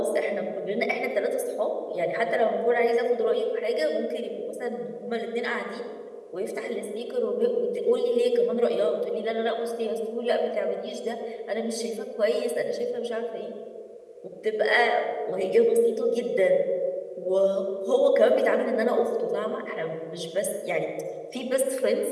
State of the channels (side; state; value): both; identical; correlation 1.00